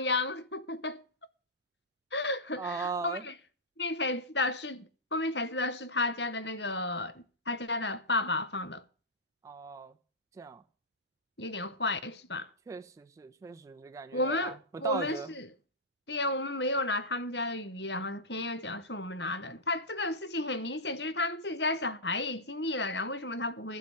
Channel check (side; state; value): both; normal; correlation -0.12